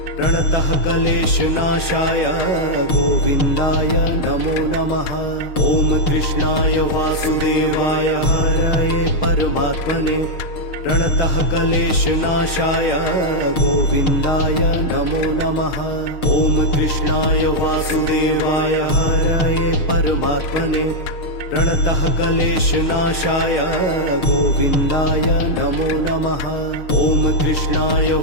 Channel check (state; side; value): late; right; 6.6 ms